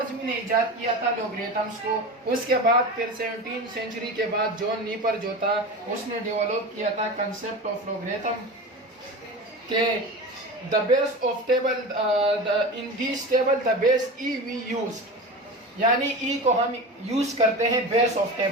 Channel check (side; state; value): both; normal; correlation 0.28